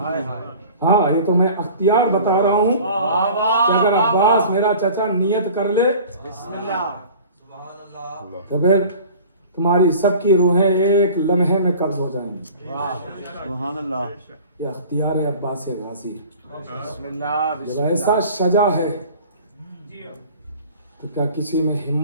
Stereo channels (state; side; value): inverted; both; correlation -0.43